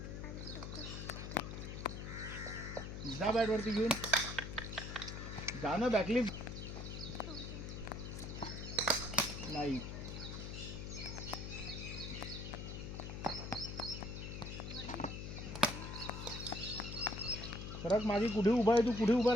जा बॅट वरती घेऊन जा ना. बॅकलिप नाही. सरक मागे. कुठे उभा आहे तू? कुठे उभा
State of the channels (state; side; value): noise; left; hum, 7 dB below the sound